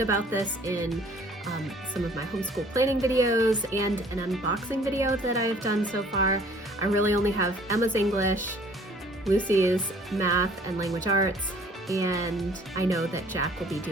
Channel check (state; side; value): normal; both; correlation 0.55